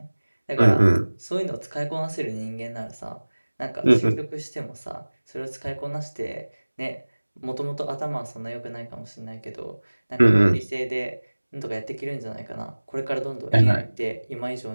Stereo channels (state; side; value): inverted; both; correlation -1.00